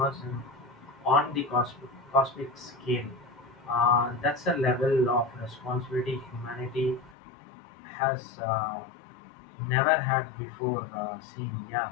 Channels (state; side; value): drops out; right; at 7.2 s